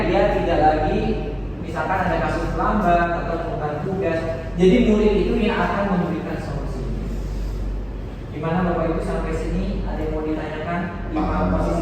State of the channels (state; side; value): identical; both; correlation 1.00